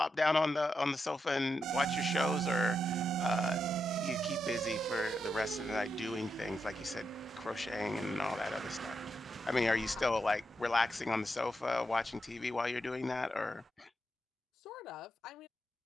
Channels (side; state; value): both; normal; correlation 0.84